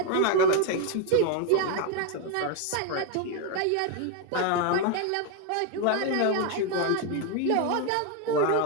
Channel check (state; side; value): different; both; correlation 0.01